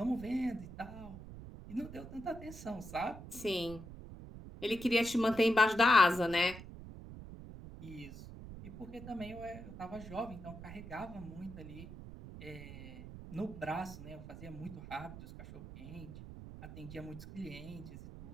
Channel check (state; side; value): noise; right; rumble, 12 dB below the sound